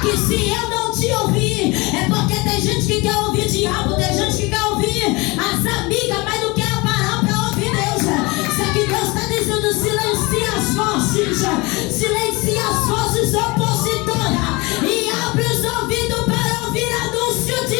se eu não te ouvir, é porque tem gente que quer ouvir diabo, tem gente que quer ouvir as amigas, mas não quer parar para ouvir Deus. Só que Deus está dizendo: silencia as vozes opositoras e abre os ouvidos para ouvir anúncio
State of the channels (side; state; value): right; quieter; 25.0 dB